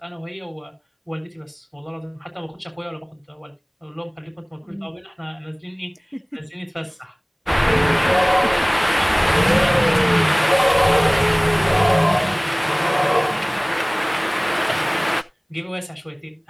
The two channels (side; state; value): both; identical; correlation 1.00